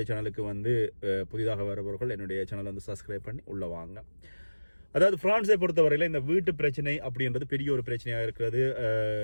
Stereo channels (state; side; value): inverted; both; correlation -1.00